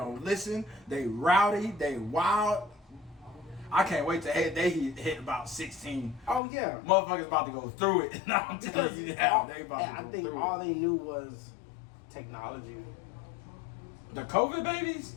listen. They rowdy. They wild. I can't wait till they hit about 16. oh yeah. Motherfuckers about to go through it. No, I'm telling you now, they about to I go think through all it. they knew was technology. The COVID babies?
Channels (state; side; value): drops out; right; at 6.4 s